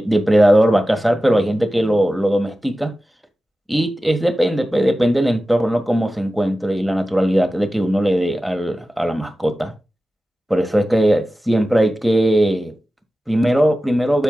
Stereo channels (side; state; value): both; normal; correlation 0.94